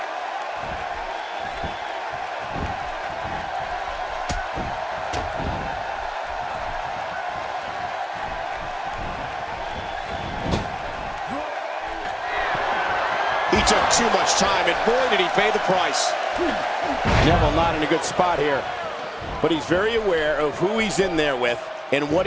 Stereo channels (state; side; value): identical; both; correlation 1.00